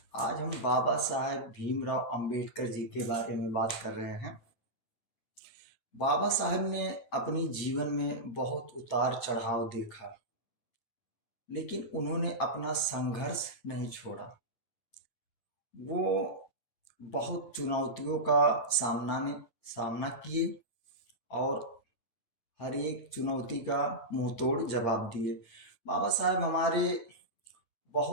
आज हम बाबा साहेब भीमराव अंबेडकर जी के बारे में बात कर रहे हैं। बाबा साहेब ने अपनी जीवन में बहुत उतार चढ़ाव देखा, लेकिन उन्होंने अपना संघर्ष नहीं छोड़ा। वो बहुत चुनौतियों का सामना किए और हर एक चुनौती का मुंह तोड़ जवाब दिए। बाबा साहेब हमारे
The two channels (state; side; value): late; right; 8.7 ms